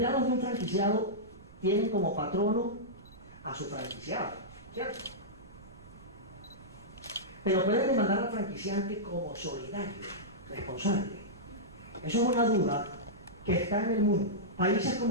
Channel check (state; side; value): noise; right; rumble, 20 dB below the sound